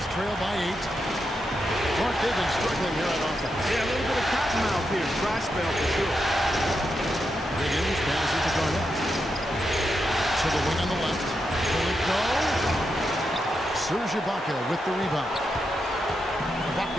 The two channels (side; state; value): both; normal; correlation 0.85